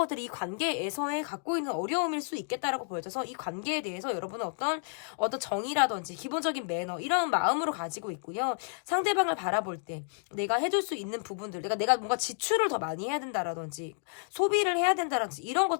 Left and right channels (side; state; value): right; silent; 57 dB below the other